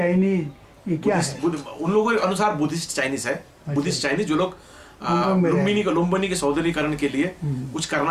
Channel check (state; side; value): identical; both; correlation 1.00